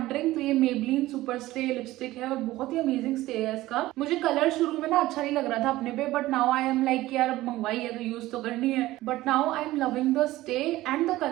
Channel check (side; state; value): left; quieter; 16.9 dB